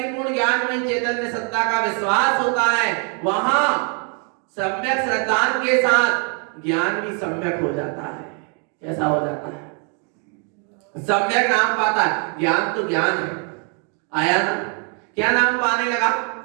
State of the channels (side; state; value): left; quieter; 40.0 dB